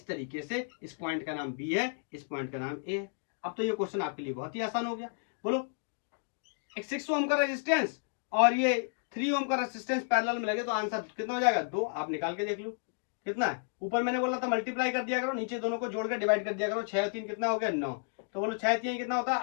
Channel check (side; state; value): right; silent; digital silence